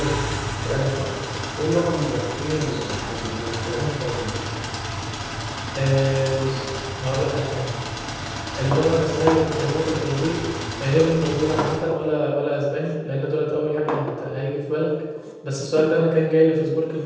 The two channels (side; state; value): both; identical; correlation 1.00